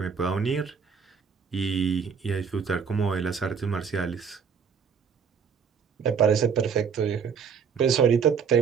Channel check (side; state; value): left; quieter; 6.4 dB